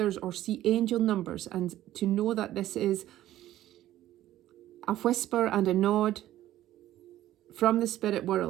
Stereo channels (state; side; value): quieter; left; 13.7 dB